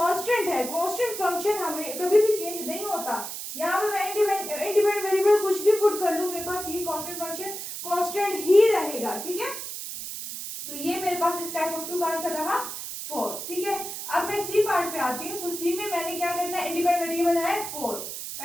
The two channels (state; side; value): noise; right; hiss, 7 dB below the sound